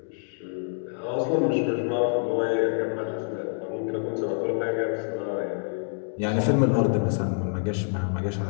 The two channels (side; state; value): right; silent; digital silence